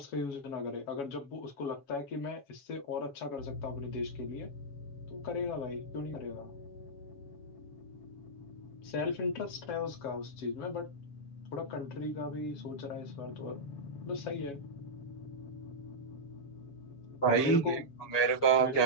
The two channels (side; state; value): right; late; 7.1 ms